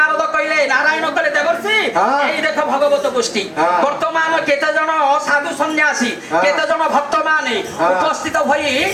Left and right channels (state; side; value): identical; both; correlation 1.00